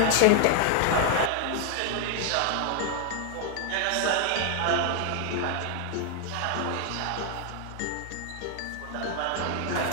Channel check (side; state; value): both; different; correlation 0.00